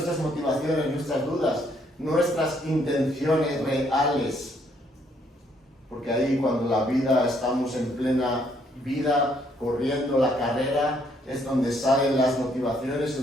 motivaciones, nuestras dudas, nuestras intenciones reales. Porque ahí cuando la vida, estamos en plena vida, corriendo la carrera, es donde salen las motivaciones,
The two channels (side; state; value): both; normal; correlation 0.69